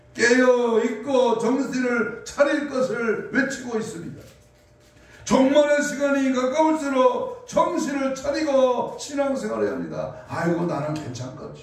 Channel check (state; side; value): identical; both; correlation 1.00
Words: 깨어있고 정신을 차릴 것을 외치고 있습니다. 종말의 시간이 가까울수록 정신을 차리고 신앙생활을 합니다. 아이고 나는